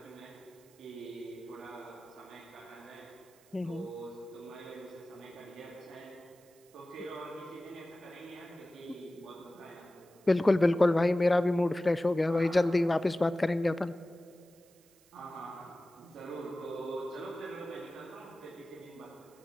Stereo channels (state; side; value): noise; right; hiss, 29 dB below the sound